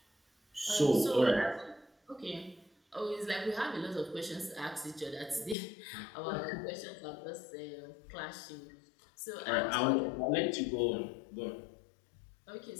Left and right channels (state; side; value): drops out; right; at 5.6 s